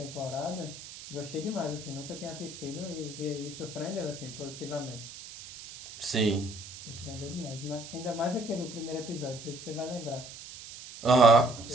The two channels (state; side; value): noise; right; hiss, 13 dB below the sound